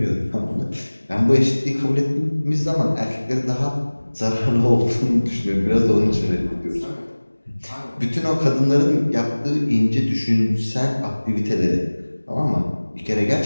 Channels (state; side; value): inverted; both; correlation -1.00